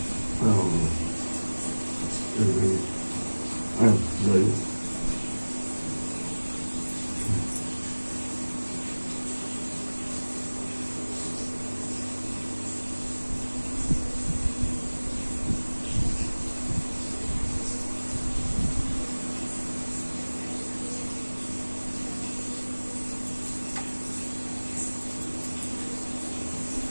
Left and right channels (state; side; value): inverted; both; correlation -1.00